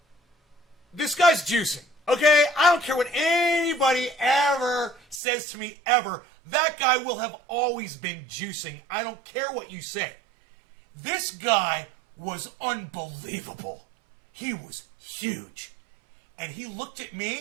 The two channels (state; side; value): drops out; left; at 5.2 s